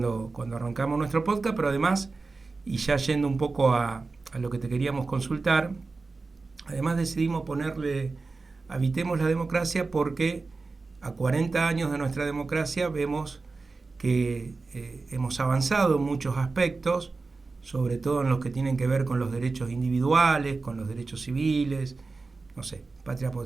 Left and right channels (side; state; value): left; quieter; 3.9 dB